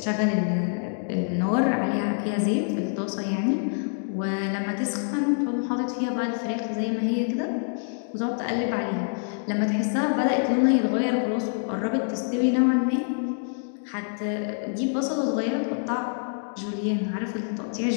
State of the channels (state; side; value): silent; right; digital silence